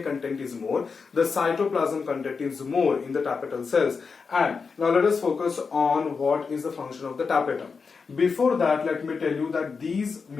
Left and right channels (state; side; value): quieter; right; 5.1 dB